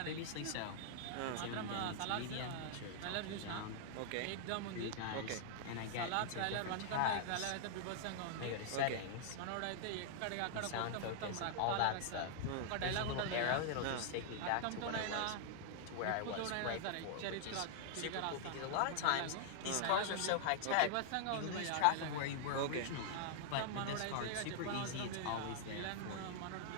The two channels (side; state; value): both; different; correlation -0.01